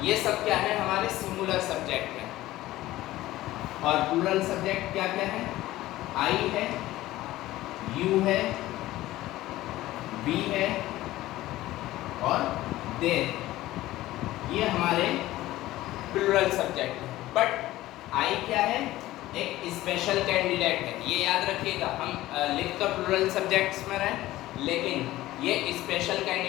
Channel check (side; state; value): right; quieter; 16.2 dB